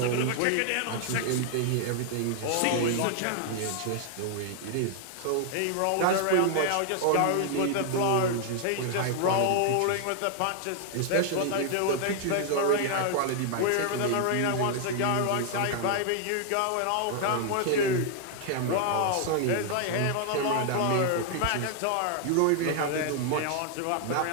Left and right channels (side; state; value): both; different; correlation 0.00